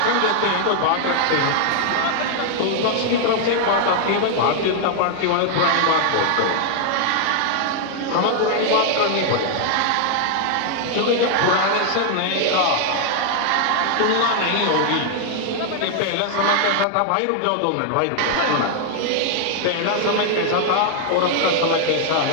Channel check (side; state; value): both; different; correlation 0.00